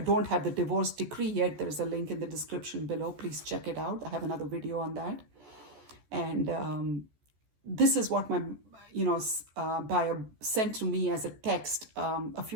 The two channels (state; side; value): late; left; 14 ms